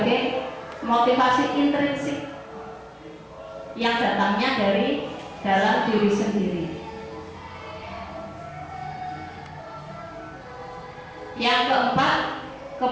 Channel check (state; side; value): identical; both; correlation 1.00